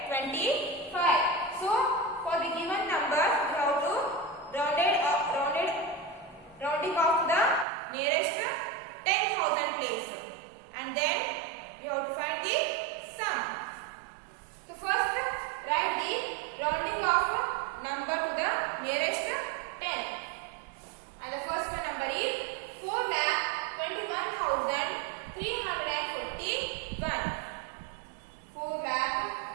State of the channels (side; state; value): left; drops out; at 7.7 s